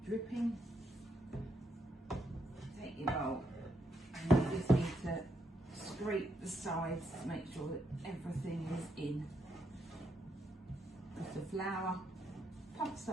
dripping. Take your bowl and you just need to scrape the sides to make sure that everything is in. Because the flour puffs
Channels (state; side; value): normal; both; correlation 0.78